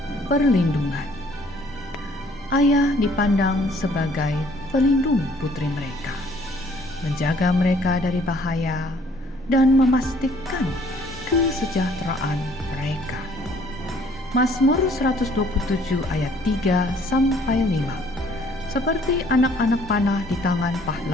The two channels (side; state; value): both; normal; correlation 0.59